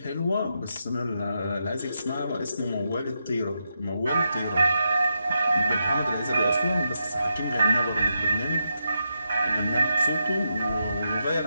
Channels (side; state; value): both; inverted; correlation -0.84